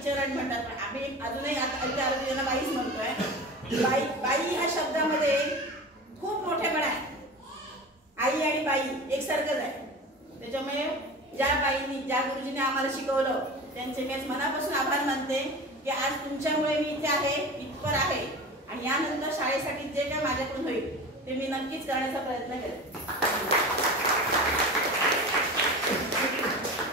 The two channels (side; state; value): both; normal; correlation 0.32